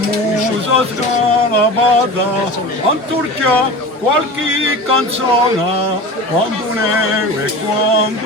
scalabada, anturchia qualche canzone, quando neve e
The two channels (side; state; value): both; normal; correlation 0.33